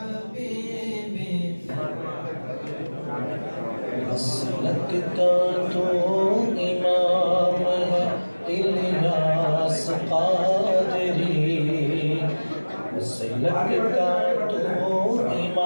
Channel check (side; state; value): both; inverted; correlation -1.00